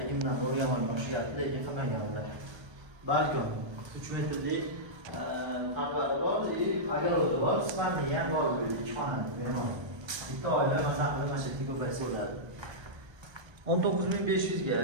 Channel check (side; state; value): left; late; 1.3 ms